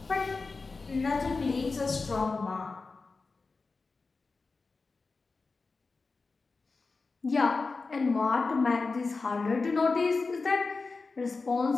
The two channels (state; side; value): quieter; right; 4.0 dB